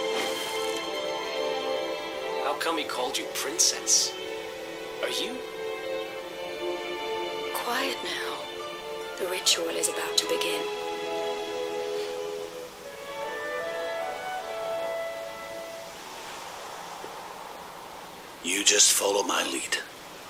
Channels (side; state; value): both; identical; correlation 1.00